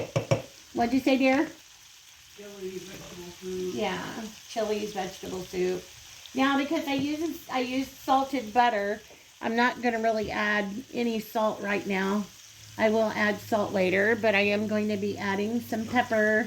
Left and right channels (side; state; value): both; identical; correlation 1.00